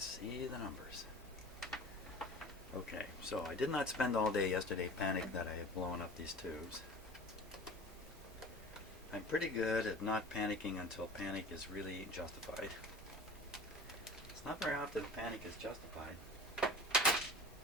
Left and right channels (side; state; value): both; normal; correlation 0.40